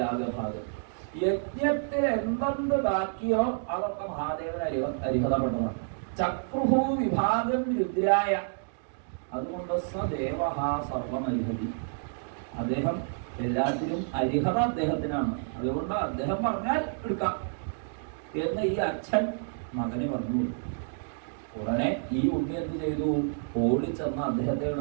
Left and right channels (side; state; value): left; silent; digital silence